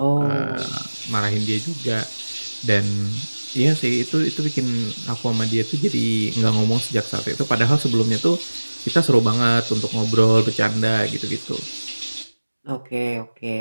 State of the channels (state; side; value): inverted; both; correlation -1.00